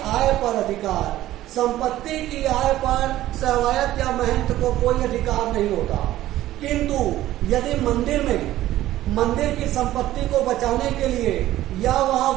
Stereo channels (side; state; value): left; quieter; 14.6 dB